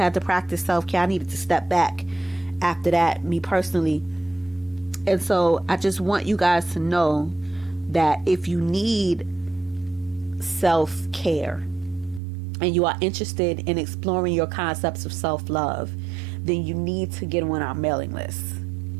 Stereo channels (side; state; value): left; drops out; at 12.2 s